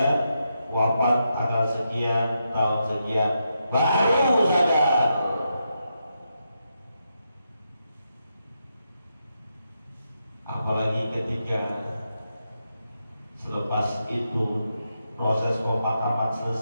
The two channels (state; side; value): inverted; both; correlation -0.84